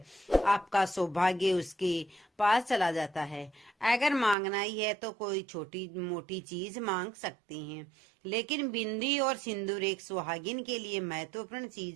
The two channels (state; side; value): drops out; left; at 4.4 s